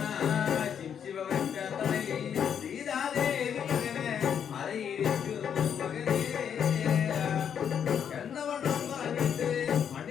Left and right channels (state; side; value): quieter; right; 8.2 dB